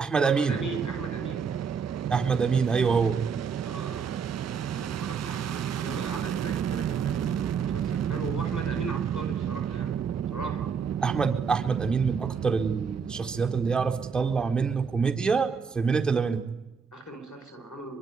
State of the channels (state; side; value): quieter; left; 5.9 dB